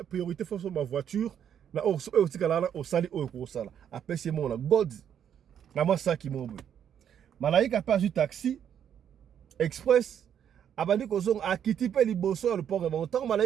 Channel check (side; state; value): left; quieter; 9.0 dB